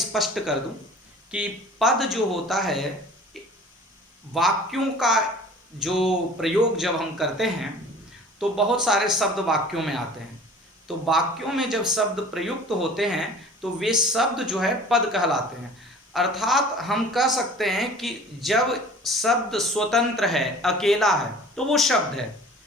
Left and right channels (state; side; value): normal; both; correlation 0.45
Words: कर दूं कि पद जो होता है, वाक्यों का जो प्रयोग जब हम करते हैं तो बहुत सारे शब्द वाक्यों में आते हैं। तो वाक्यों में जब शब्द प्रयुक्त होते हैं तो वे शब्द जो है पद कहलाते हैं। अर्थात हम कह सकते हैं कि जब शब्द स्वतंत्र है, अकेला है, तो वो शब्द है,